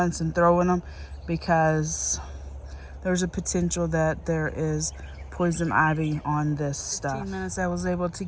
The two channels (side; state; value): both; identical; correlation 1.00